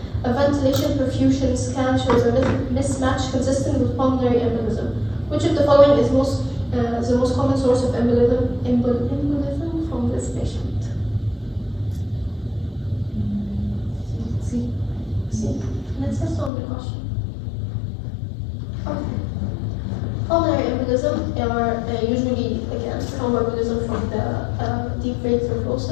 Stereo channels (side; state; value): right; drops out; at 16.5 s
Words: A ventilation perfusion scan shows a mismatch consistent with pulmonary embolism. Which of the following is the most common source of embolism from this patient? Let's just on the question. Okay. Pulmonary embolism are usually, again, thromboembolism from the deep vein